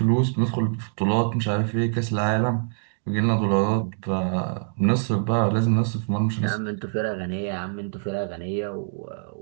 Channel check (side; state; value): left; silent; digital silence